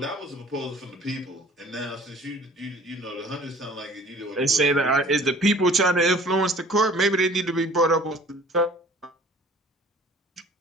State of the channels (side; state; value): both; normal; correlation 0.50